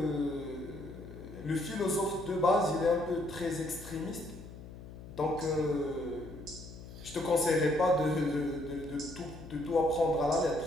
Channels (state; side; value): noise; left; hum, 14 dB below the sound